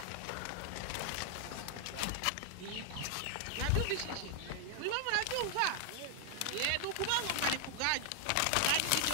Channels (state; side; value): different; both; correlation 0.00